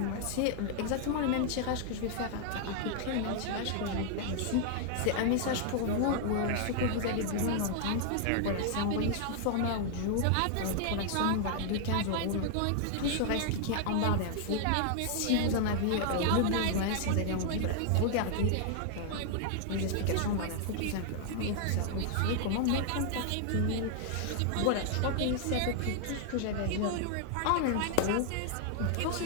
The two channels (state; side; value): different; both; correlation 0.00